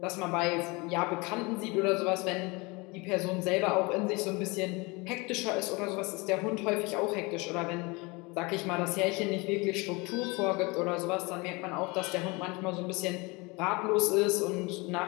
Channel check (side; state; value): right; quieter; 26.3 dB